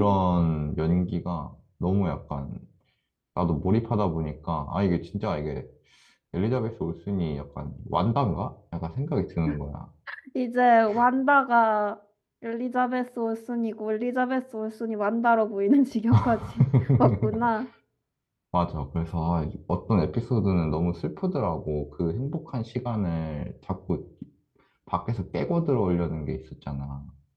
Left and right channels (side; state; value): both; identical; correlation 1.00